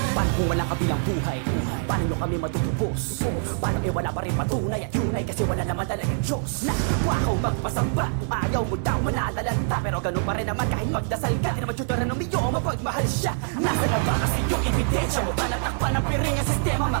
Paano kung walang kabilang buhay? Paano nyo kami matutubos? Paano wala pa rin patunay at yun ay kasi wala naman talagang Diyos na wakaw magpasamba. Kung ayaw mo daw manalalanta, pero ganun pa rin naman kahit magdasal ka. Di naman tuturan ng miyo, mapagmahal siya. Nasa na ba kasi yung ebidensya? Mukha natakpan ng piring ang sistema.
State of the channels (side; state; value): left; silent; digital silence